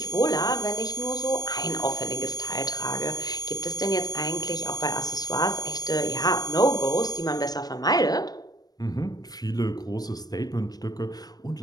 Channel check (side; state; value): right; late; 0.19 ms